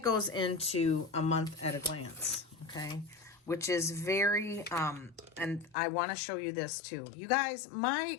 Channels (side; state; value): right; drops out; at 5.8 s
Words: goes into a month at a glance. Okay. Which is very, and I want to show you this too. You guys, my